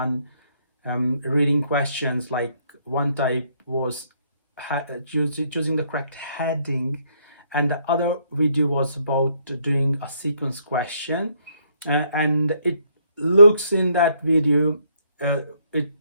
reading questions. Like one type was choosing the correct heading, and the other video was about doing a sequence question. And it looks in that video, uh,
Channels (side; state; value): both; inverted; correlation -0.70